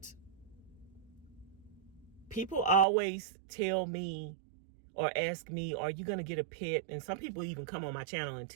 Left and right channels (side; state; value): left; drops out; at 2.9 s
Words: people always tell me or ask me, are you going to get a pet? And some people even come on my channel and